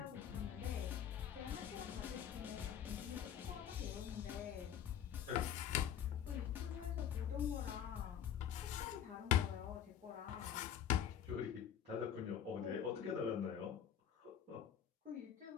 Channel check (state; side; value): quieter; right; 9.3 dB